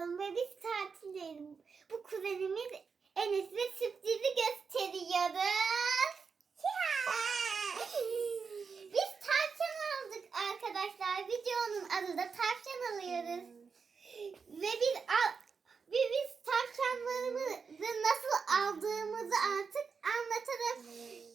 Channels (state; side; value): quieter; left; 5.5 dB